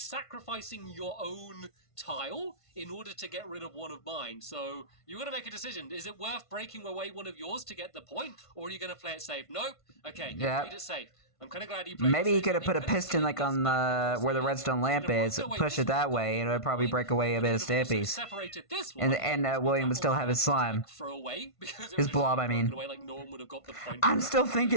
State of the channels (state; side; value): late; right; 1.5 ms